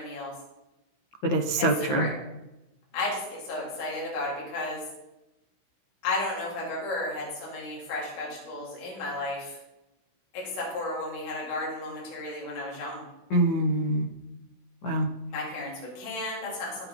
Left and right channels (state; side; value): late; right; 15 ms